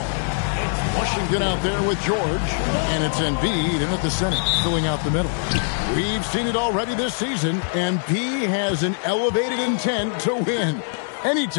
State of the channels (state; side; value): silent; right; digital silence